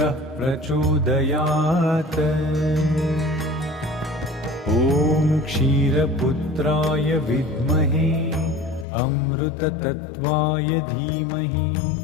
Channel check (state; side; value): drops out; right; at 8.8 s